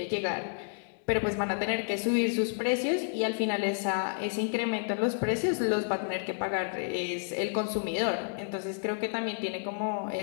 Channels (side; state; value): right; silent; digital silence